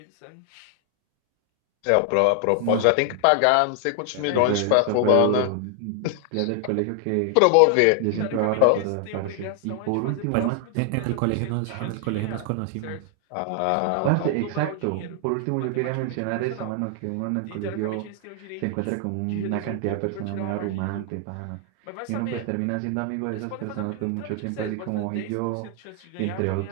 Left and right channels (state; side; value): different; both; correlation 0.00